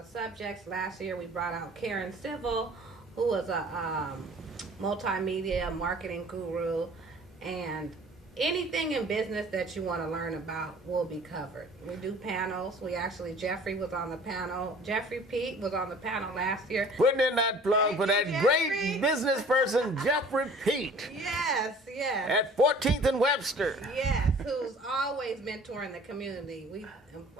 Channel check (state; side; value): normal; both; correlation 0.49